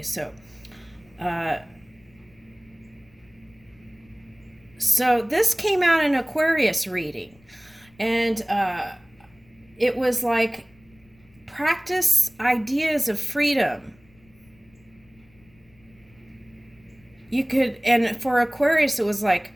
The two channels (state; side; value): noise; left; rumble, 30 dB below the sound